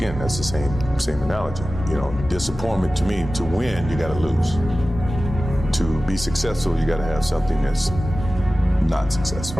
that's the same analogy. You know, disappointment to me, to win, you gotta lose. To be successful, you gotta have something that's not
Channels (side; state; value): both; normal; correlation 0.96